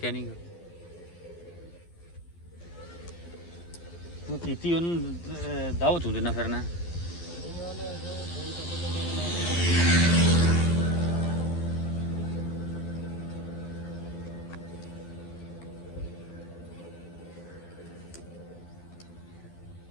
ਨਹੀਂ। ਤੂੰ ਕੀਤੀ ਉਹਨੂੰ ਦਾਵਤ ਹੁੰਦੇ ਨਾ ਫਿਰਨਾ।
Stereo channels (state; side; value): late; right; 12 ms